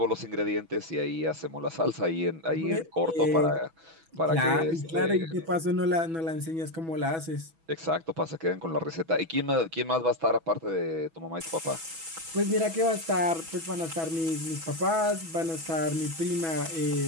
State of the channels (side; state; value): left; late; 6.1 ms